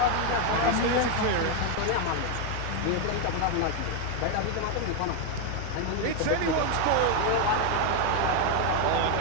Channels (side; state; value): both; different; correlation 0.01